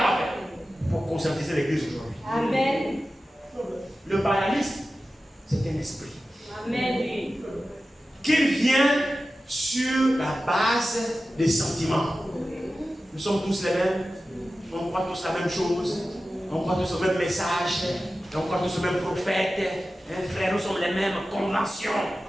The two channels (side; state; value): both; normal; correlation 0.94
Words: a fait pour conscientiser l'église aujourd'hui. Amen. Le balamisme, c'est un esprit. Amen. Qui vient sur la base des sentiments. Nous sommes tous les mêmes. On croit tous la même chose. On croit tous au même message. On croit tous au même prophète. Frère, nous sommes les mêmes conventions.